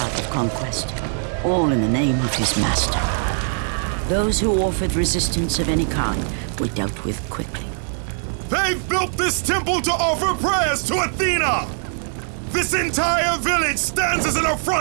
of conquest, all in the name of his master. Those who offered resistance of any kind were dealt with quickly. They've built this temple to offer prayers to Athena! This entire village stands as an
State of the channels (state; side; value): silent; left; 64 dB below the other